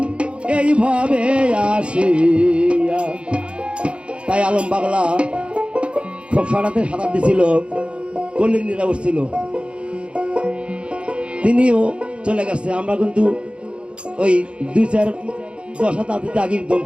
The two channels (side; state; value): left; late; 0.058 ms